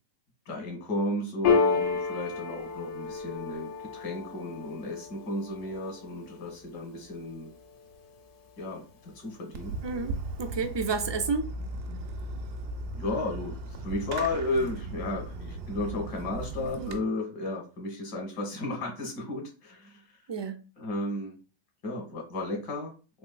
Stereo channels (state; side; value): late; left; 1.2 ms